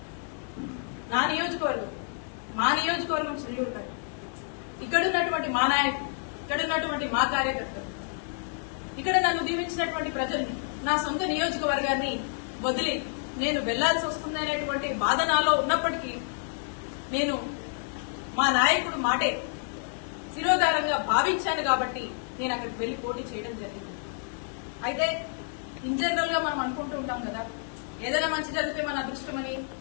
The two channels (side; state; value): right; silent; 59 dB below the other